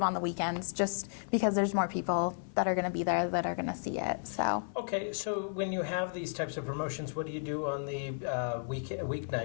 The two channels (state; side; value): silent; right; 56 dB below the other